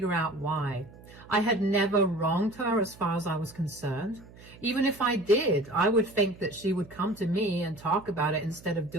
out why. I had never wronged her as far as I was concerned. Even if I did, I would think that she would come to me and talk about it instead of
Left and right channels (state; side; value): noise; right; hum, 21 dB below the sound